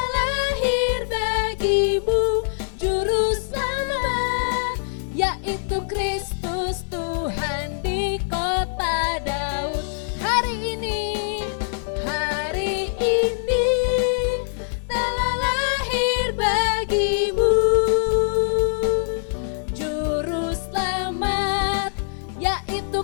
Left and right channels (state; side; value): silent; right; 55 dB below the other